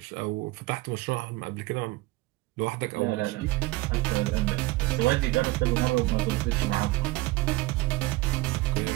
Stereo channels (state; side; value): quieter; left; 20.9 dB